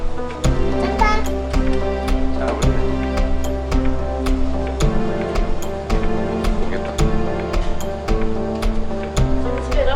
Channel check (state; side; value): identical; both; correlation 1.00